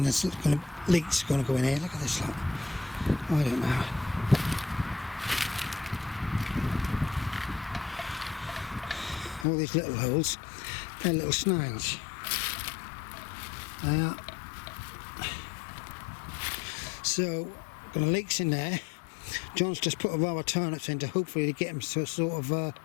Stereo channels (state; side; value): drops out; right; at 9.5 s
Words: there's leaks going to go in here. Look at this lot. I don't know. All these little holes, they're little snails. They are. So, got leaks in there. John's just put a row of turnips in to hopefully get them to a sort of